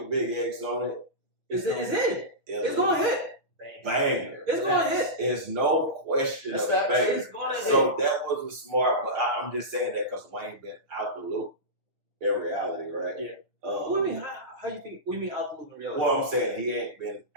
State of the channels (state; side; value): late; left; 6.2 ms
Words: Big X on it. it's it. It's going to hit. Banger. It's going to hit. There's no question That's of facts. banger. It's going to hit. So that was a smart, but I'm just saying that because Wayne been out the loop in reality, right? Yeah. What do you mean? How you think? What do you mean out the loop in reality? Well, I'm saying he ain't been